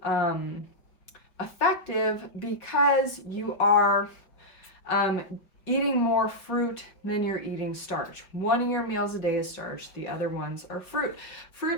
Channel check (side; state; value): right; late; 5.5 ms